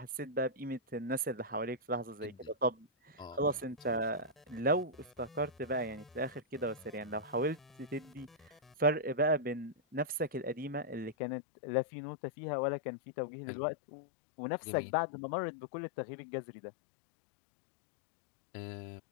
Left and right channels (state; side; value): drops out; right; at 11.2 s